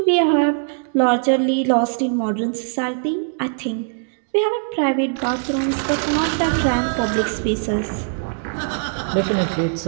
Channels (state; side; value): silent; left; 65 dB below the other